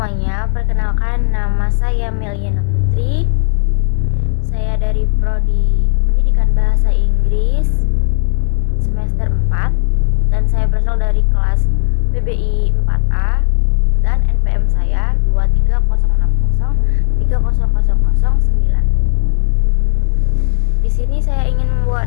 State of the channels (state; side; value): silent; right; digital silence